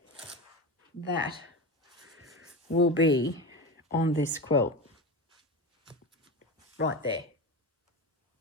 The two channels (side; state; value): both; normal; correlation 0.22